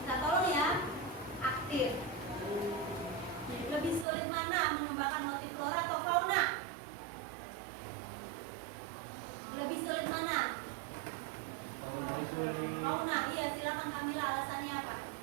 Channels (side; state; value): left; drops out; at 4.0 s